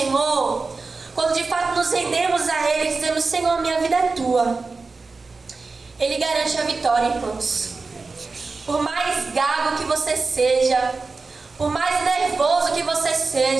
quando de fato nos rendemos a Ele, dizemos: Senhor, minha vida é Tua, Ele garante a vitória, irmãos. Por mais gago que você seja, por mais nervoso que você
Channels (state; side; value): quieter; left; 4.1 dB